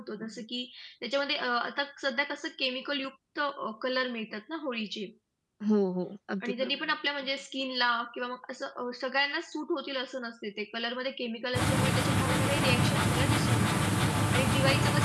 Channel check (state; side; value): identical; both; correlation 1.00